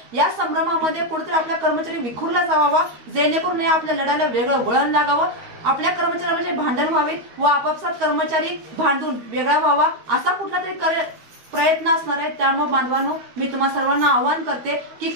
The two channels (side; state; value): left; late; 13 ms